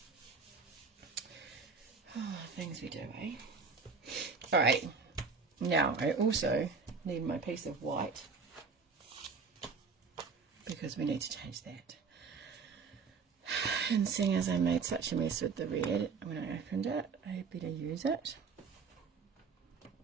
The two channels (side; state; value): left; quieter; 5.1 dB